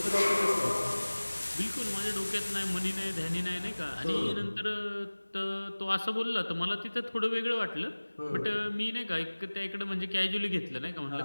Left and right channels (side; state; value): both; inverted; correlation -1.00